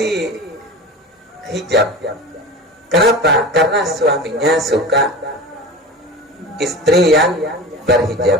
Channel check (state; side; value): normal; both; correlation 0.32